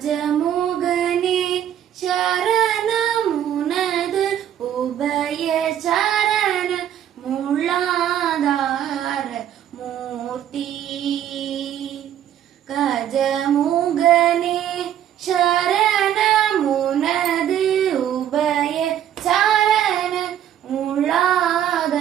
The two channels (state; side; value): quieter; left; 10.6 dB